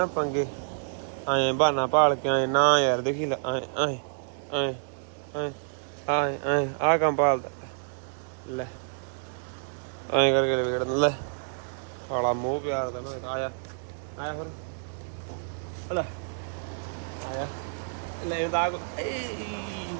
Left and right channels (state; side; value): silent; left; digital silence